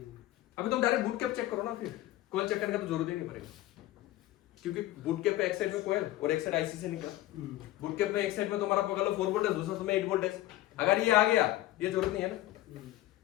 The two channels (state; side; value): quieter; right; 15.5 dB